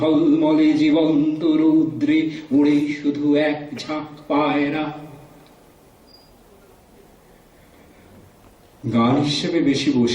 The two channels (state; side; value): identical; both; correlation 1.00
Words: জীবন্ত রৌদ্রে উড়ে শুধু এক ঝাঁক পায়রা। গান হিসেবে বেশি